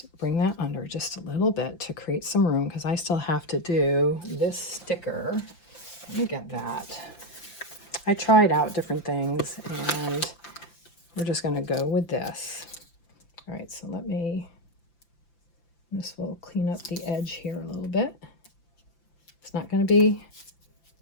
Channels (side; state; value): right; late; 5.9 ms